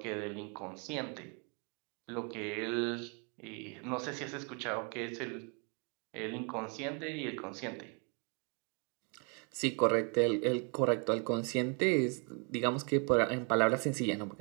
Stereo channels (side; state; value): left; quieter; 34.7 dB